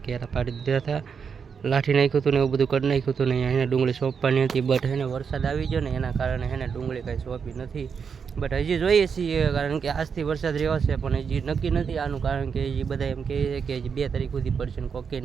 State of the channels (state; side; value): quieter; left; 6.3 dB